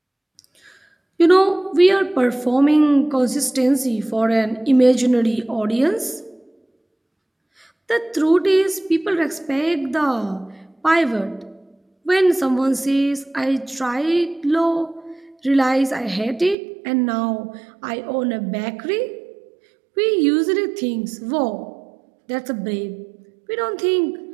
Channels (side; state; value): left; drops out; at 16.6 s